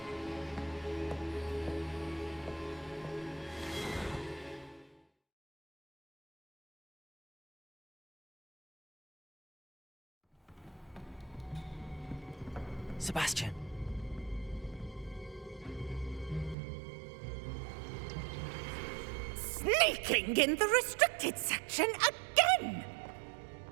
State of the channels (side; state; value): left; drops out; at 16.6 s